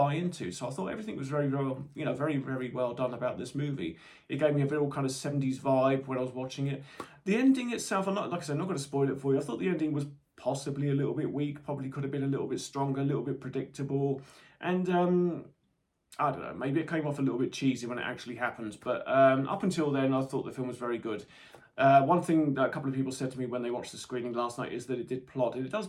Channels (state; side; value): identical; both; correlation 1.00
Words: into. So I thought everything was very, very, very, very well done about this movie. It gave me a real kind of 70s vibe when I was watching it. The ending itself, like I said, I'm not going to spoil it for you. I thought the ending was possibly a little bit weak, probably could have been a little bit stronger, a little bit predictable, and I don't know, maybe it came off a little bit cheesy when it actually happens, but up until then I thought the film was very good. One thing that a couple of people said to me when they watched the screening last night is that it did plod, and it does